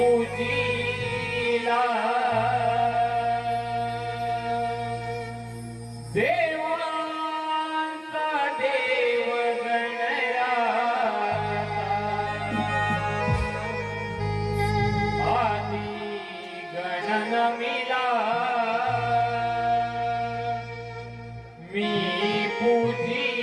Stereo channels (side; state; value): both; identical; correlation 1.00